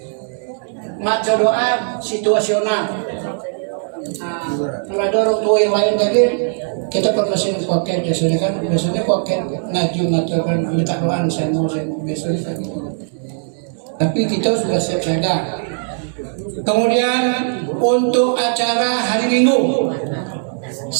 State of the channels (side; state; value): left; silent; digital silence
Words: Maca doa situasional. Kalau ada orang tua yang lain tadi, kita permasihin koket biasanya koket ngaji mengatakan minta doa saya mau biasanya kan gitu. Tapi kita sudah siap siaga. Kemudian untuk acara hari Minggu,